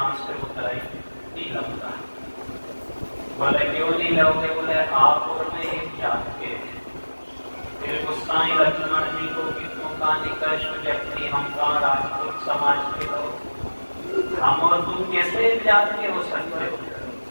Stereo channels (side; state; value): both; inverted; correlation -1.00